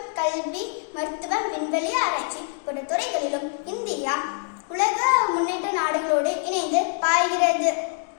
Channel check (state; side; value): silent; right; 55 dB below the other